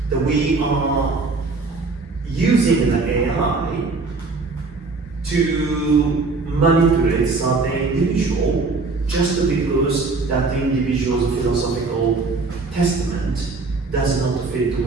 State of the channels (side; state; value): left; quieter; 3.9 dB